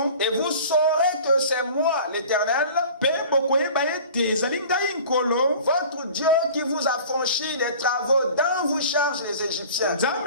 Et vous saurez que c'est moi l'Éternel, votre Dieu, qui vous a franchi des travaux dont vous chargent les Égyptiens. Je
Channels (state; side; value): inverted; both; correlation -0.43